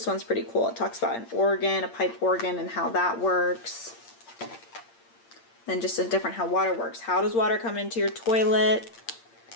one's pretty cool. It talks about an organ, a pipe organ, and how that works. Then just a different how water works. How does water come into your toilet?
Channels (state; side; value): late; right; 8.7 ms